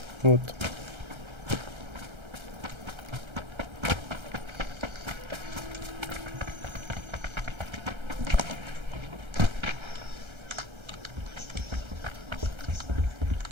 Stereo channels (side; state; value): left; late; 1.3 ms